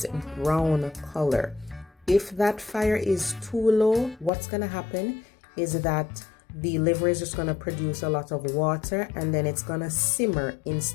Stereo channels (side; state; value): right; drops out; at 4.3 s